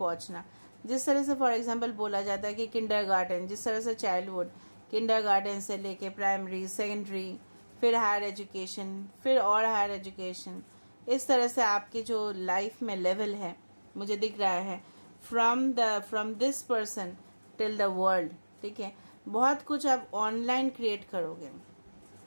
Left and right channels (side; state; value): both; inverted; correlation -1.00